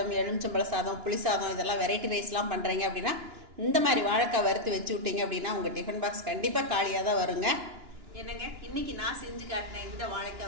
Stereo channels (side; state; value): left; late; 2.9 ms